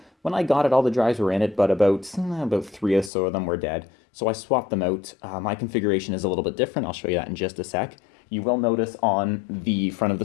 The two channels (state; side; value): drops out; right; at 3.1 s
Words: when I got it, all the drives were in it, but about 3 or so of them were dead. So I swapped them out. My configuration is a little bit different. I'll show you that in just a sec. You will notice on the front of the